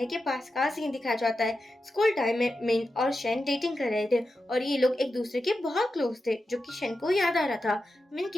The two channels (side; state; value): both; normal; correlation 0.90